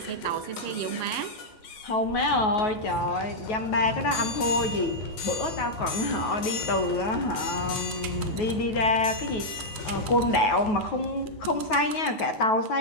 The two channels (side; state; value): right; late; 9.3 ms